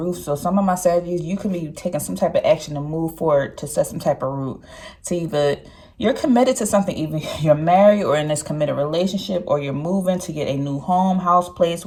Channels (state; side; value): identical; both; correlation 1.00